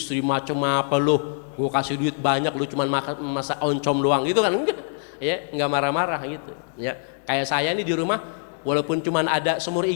macam apa lu? Gua kasih duit banyak, lu cuman masak oncom doang gitu kan? Enggak. Ya, enggak marah-marah gitu. Ya. Kayak saya nih di rumah, walaupun cuma ada semur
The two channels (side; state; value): right; silent; digital silence